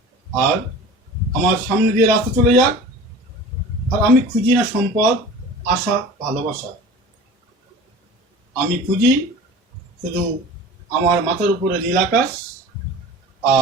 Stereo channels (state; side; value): normal; both; correlation 0.39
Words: আর আমার সামনে দিয়ে রাস্তা চলে যাক, আর আমি খুঁজি না সম্পদ, আশা, ভালোবাসা। আমি খুঁজি শুধু আমার মাথার উপরে নীল আকাশ,